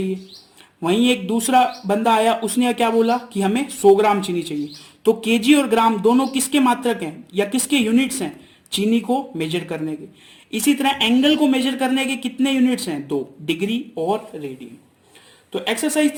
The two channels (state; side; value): identical; both; correlation 1.00